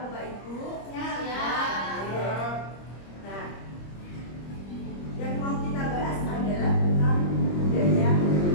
Bapak Ibu? Siap. Nah, yang mau kita bahas adalah tentang budaya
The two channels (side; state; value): right; late; 25 ms